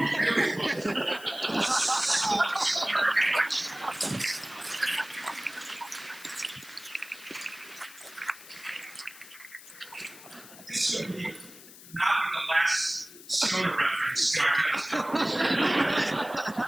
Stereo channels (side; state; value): left; noise; hiss, 18 dB below the sound